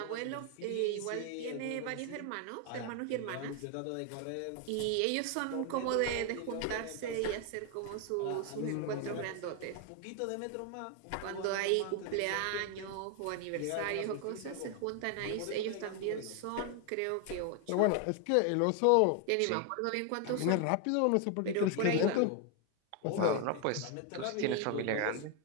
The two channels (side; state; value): both; different; correlation 0.01